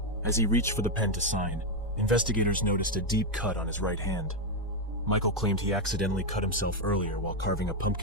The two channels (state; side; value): normal; both; correlation 0.03